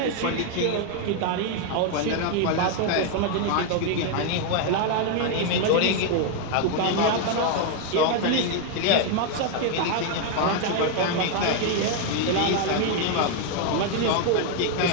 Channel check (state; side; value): different; both; correlation 0.01